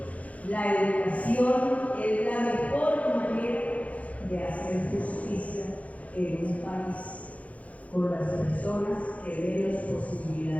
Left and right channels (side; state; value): right; late; 0.067 ms